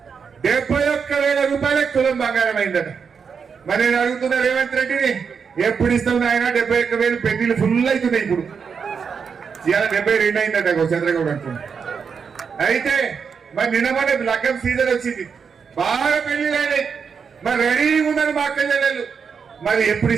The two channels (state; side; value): quieter; left; 6.2 dB